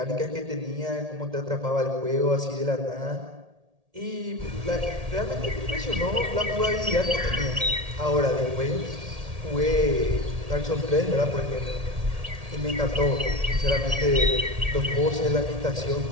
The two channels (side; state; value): left; late; 1.8 ms